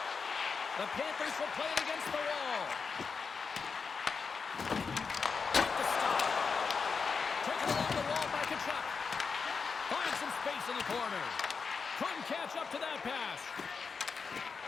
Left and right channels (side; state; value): right; quieter; 5.3 dB